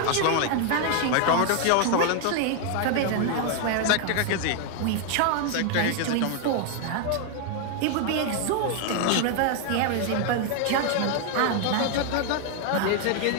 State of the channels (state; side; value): different; both; correlation 0.01